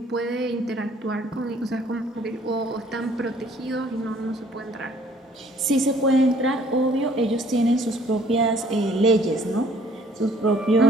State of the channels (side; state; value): both; normal; correlation 0.58